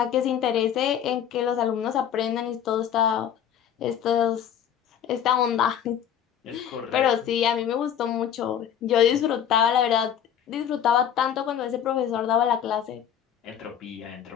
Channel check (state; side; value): quieter; right; 9.2 dB